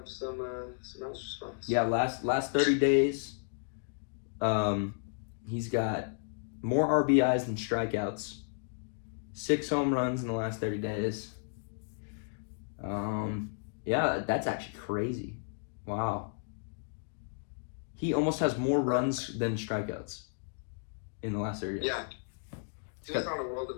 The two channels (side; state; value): right; silent; digital silence